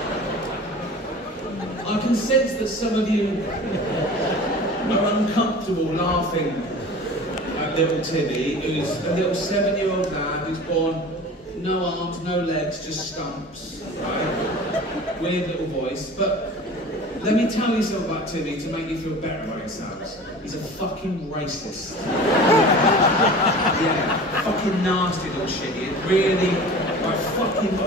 I can sense that some of you are uncomfortable laughing at little Timmy, who's a little 7-year-old lad who's born no arms, no legs, just stumps, right? Weird little voice, but let me tell you something about Timmy to make you feel better about yourselves. He's a fucking racist. Yeah, fucking nasty little shit. He really, like,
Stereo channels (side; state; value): both; normal; correlation 0.39